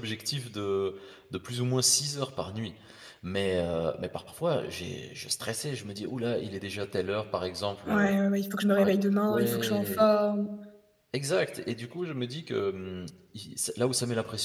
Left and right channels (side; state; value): both; identical; correlation 1.00